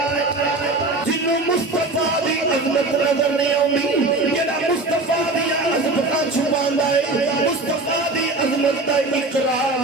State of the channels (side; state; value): left; quieter; 3.1 dB